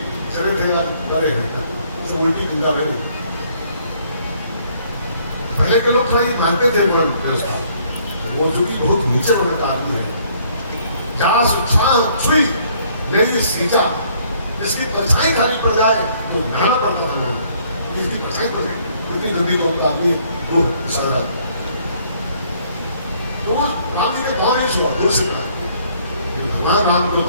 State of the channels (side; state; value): both; inverted; correlation -0.63